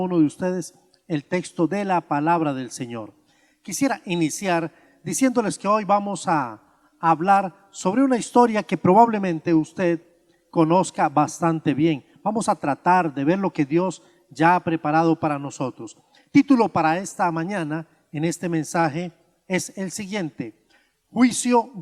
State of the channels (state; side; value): identical; both; correlation 1.00